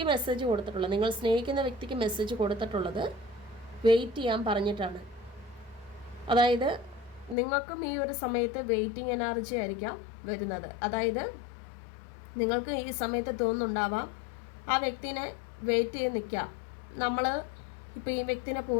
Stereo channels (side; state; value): right; drops out; at 7.4 s